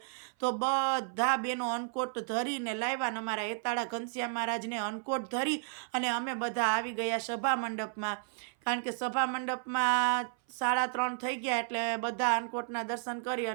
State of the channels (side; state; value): left; silent; 56 dB below the other